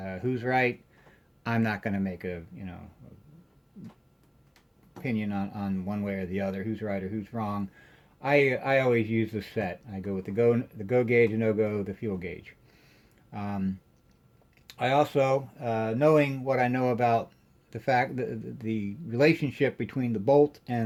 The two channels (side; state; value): both; identical; correlation 1.00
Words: Who's right? I'm not going to make a, you know, opinion on one way or the other, who's right or who's wrong. I always use the set. I go with the go gauge, and no-go, the fuel gauge. I also, knowing what I know about the fact that the relationship between the bolt